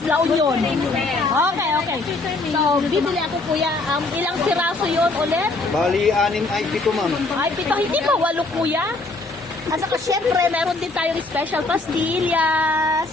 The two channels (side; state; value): right; quieter; 3.2 dB